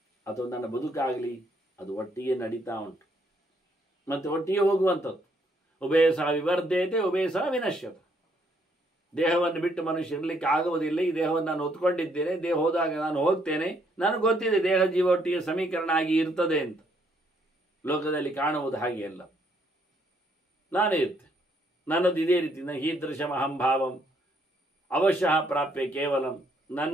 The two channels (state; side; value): normal; both; correlation 0.70